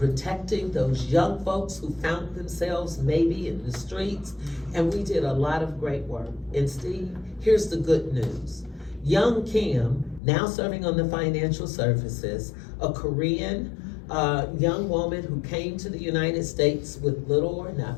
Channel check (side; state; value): right; drops out; at 10.2 s